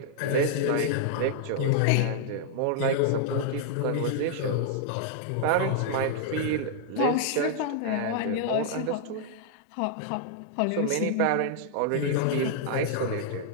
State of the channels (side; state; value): both; different; correlation -0.01